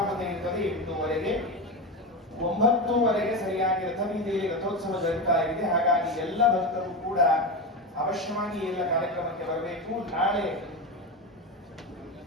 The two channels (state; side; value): normal; both; correlation 0.18